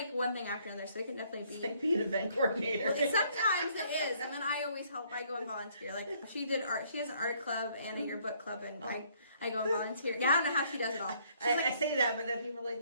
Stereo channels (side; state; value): both; inverted; correlation -0.65